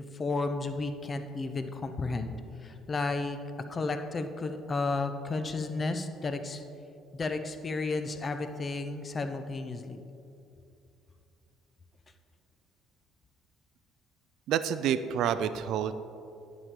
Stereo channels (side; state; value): both; normal; correlation 0.69